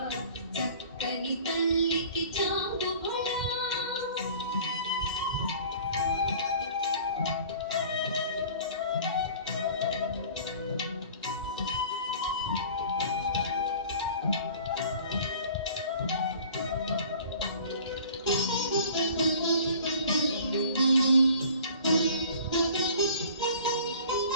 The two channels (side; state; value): both; inverted; correlation -0.47